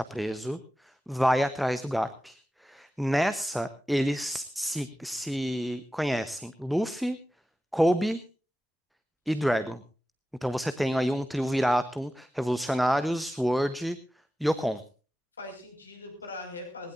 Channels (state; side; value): normal; both; correlation 0.94